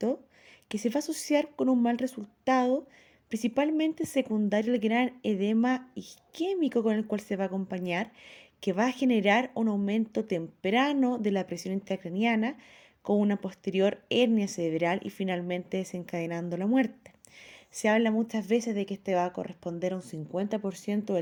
que se va a asociar con un mal resultado, principalmente secundario al gran edema isquémico con el cual se va a acompañar, que va a generar un aumento temprano de la presión intracraniana con una posterior hernia cerebral y finalmente desencadenando la muerte. Se habla muchas veces de que este va a corresponder a un 50%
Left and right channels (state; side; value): identical; both; correlation 1.00